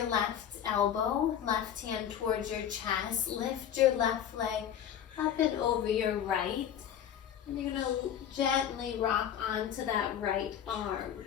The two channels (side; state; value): right; quieter; 9.6 dB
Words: left elbow, left hand towards your chest. Lift your left leg up and over your right, and you're going to gently rock onto that right arm.